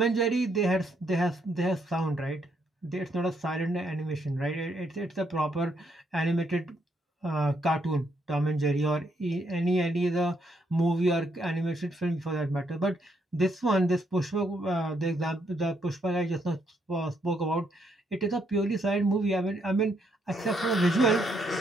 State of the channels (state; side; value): normal; both; correlation 0.74